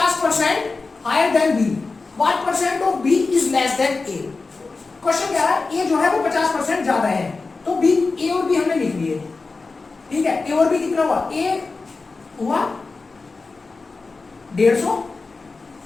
higher than b, what percent of b is less than a, question कह रहा है a जो है वो 50% ज्यादा है, तो b, a और b हमने लिख लिए, ठीक है। a और b कितना हुआ, a हुआ 150,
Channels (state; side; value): quieter; right; 4.0 dB